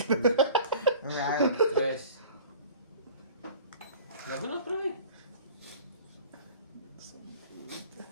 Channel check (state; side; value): inverted; both; correlation -0.43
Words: Right. Tres. Lago na, pre.